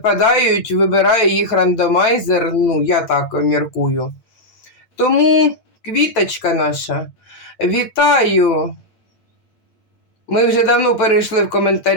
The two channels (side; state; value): right; late; 9.1 ms